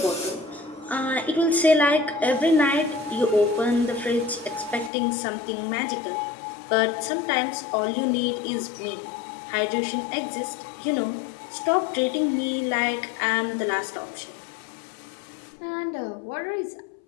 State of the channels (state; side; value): drops out; right; at 4.9 s